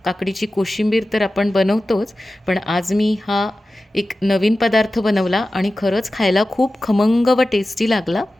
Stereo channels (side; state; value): both; normal; correlation 0.95